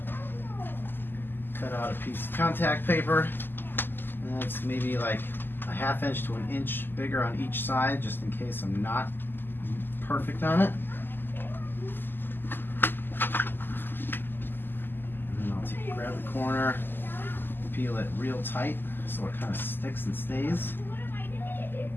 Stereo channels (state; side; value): late; right; 0.095 ms